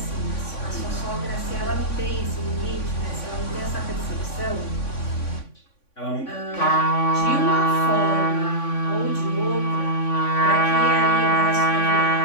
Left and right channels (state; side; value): late; right; 3.5 ms